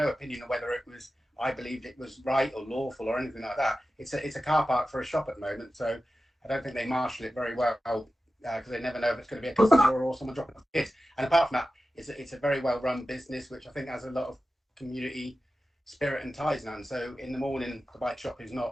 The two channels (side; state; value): both; normal; correlation 0.93